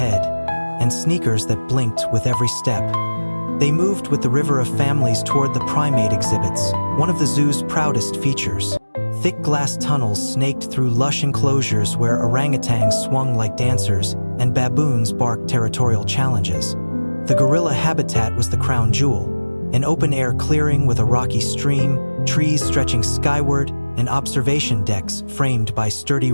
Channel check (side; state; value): both; inverted; correlation -1.00